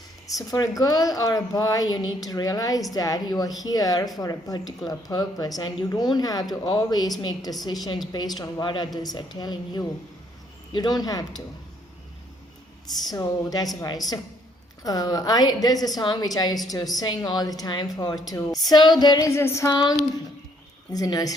So for a girl or a boy, you need to realize that you are here for a particular purpose, and you don't have to always make decisions based on what others are telling you. You don't have to. So that's why. So there's a song which I used to sing all the time So there is a song. It's a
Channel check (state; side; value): normal; both; correlation 0.67